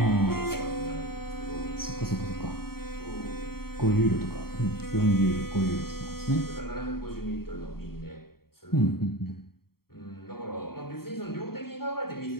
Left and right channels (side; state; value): right; late; 0.94 ms